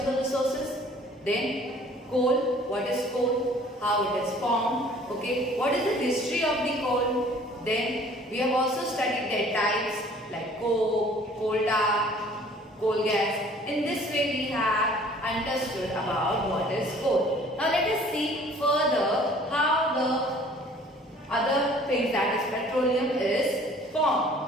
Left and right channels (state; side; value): normal; both; correlation 0.53